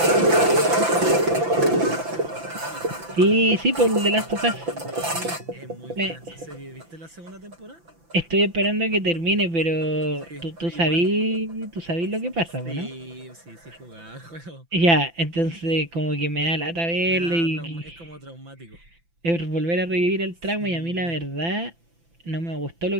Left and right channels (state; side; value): late; left; 5.9 ms